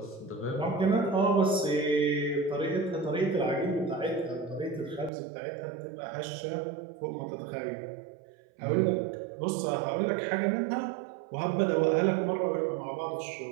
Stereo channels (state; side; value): drops out; left; at 5.1 s